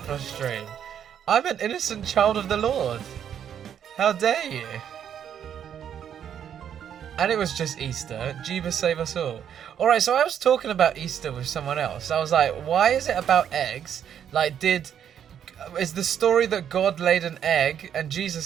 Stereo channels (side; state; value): left; quieter; 9.0 dB